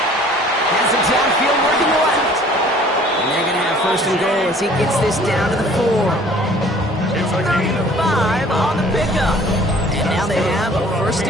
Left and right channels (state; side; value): normal; both; correlation 0.52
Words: Has it downfield working left. And they're going to have 1st and goal as he gets this down to the 4. It's a gain of 5 on the pickup. And now they have a 1st